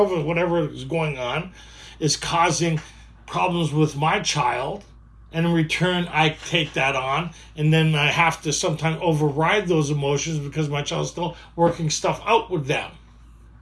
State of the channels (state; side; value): identical; both; correlation 1.00